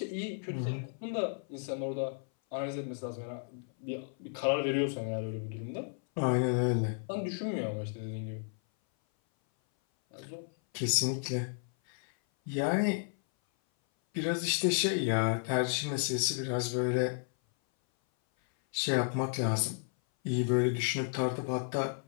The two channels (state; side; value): silent; right; 56 dB below the other